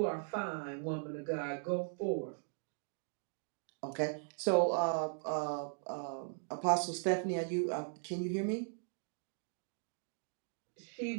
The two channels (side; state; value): left; silent; digital silence